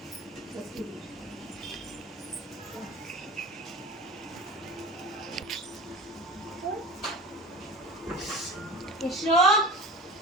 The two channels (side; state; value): both; normal; correlation 0.34